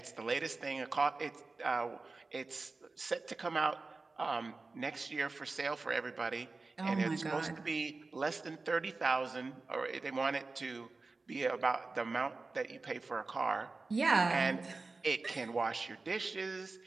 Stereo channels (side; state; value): left; quieter; 3.7 dB